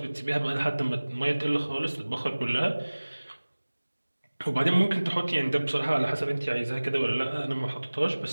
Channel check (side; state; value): both; inverted; correlation -1.00